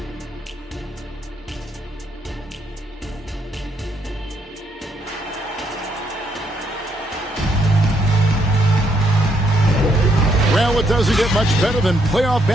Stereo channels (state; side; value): normal; both; correlation 0.73